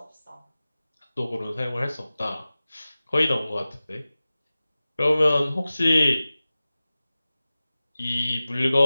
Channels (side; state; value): both; inverted; correlation -0.97